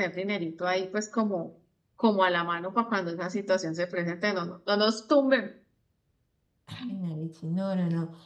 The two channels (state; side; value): identical; both; correlation 1.00